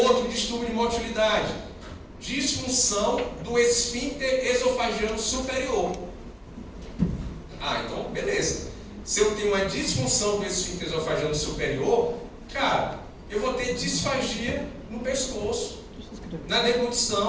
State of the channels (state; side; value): identical; both; correlation 1.00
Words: distúrbio de motilidade. Disfunção do esfíncter esofagiano superior. Então beleza. Se eu tenho uma disfunção do esfíncter esofagiano superior, cara, eu vou ter disfagia no pescoço, na